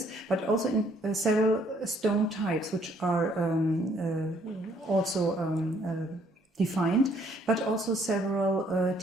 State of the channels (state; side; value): normal; both; correlation 0.65